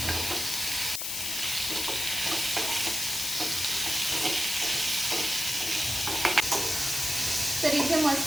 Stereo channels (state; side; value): noise; left; hiss, 2 dB below the sound